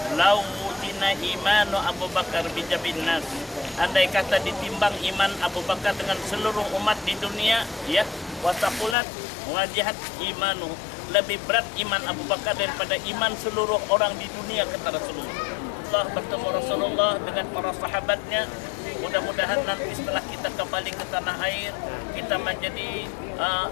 Lau wujina imanu Abu Bakar bijabin nas. Andai kata ditimbang iman Abu Bakar dengan seluruh umat di dunia, ya, wasaqulat wajihat imanu, lebih berat iman Abu Bakar daripada iman seluruh orang di dunia, kata Rasulullah. Allah bertemu Rasulullah dengan para sahabatnya. Mudah-mudahan nanti setelah kita kembali ke tanah air, kita menjadi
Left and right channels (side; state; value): right; drops out; at 9.0 s